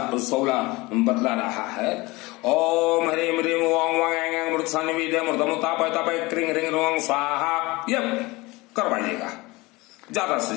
बतला रहा है, ओम ह्रीं ह्रीं ओम वांग मृत सन्निविदे मृतमुतापय तपय क्रिंग रिंग रोंग स्वाहा, ये करवाइएगा ज्यादा से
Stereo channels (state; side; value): quieter; right; 22.6 dB